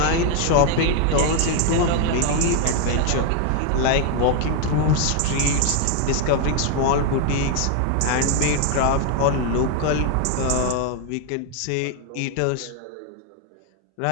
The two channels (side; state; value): both; different; correlation 0.00